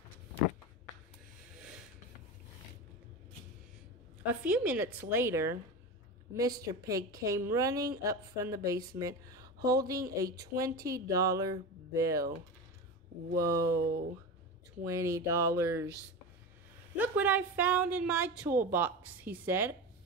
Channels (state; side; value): normal; both; correlation 0.25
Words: A few minutes later, Mr. Pig came running up from the basement holding a $20 bill. Whoa, $20. "Look what I found in my toolbox," he said.